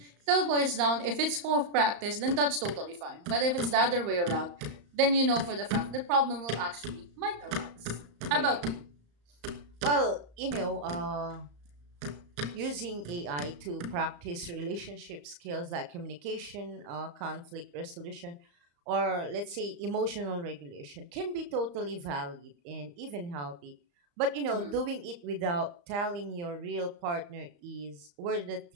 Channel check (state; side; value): late; left; 35 ms